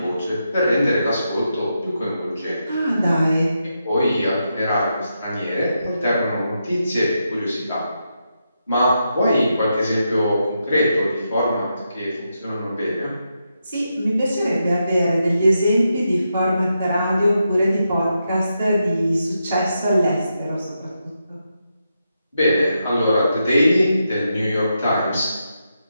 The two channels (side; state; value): both; inverted; correlation -0.85